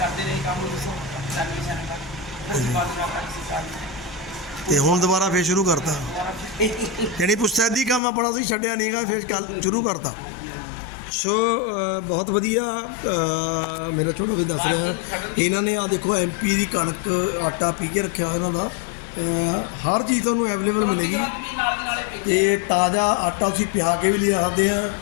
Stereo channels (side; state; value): right; drops out; at 8.0 s